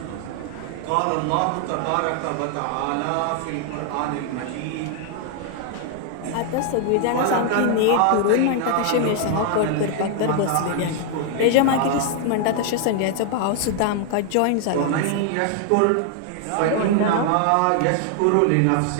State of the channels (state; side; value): different; both; correlation 0.00